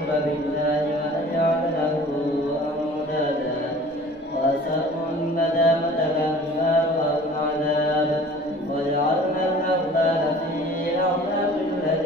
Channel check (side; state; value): both; normal; correlation 0.46